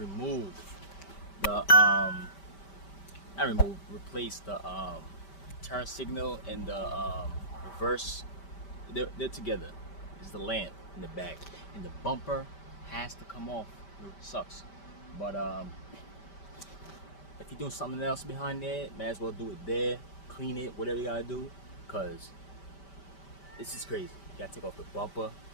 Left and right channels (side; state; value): right; late; 5.1 ms